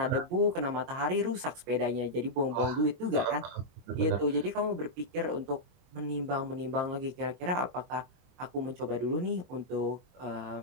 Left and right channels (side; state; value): left; late; 22 ms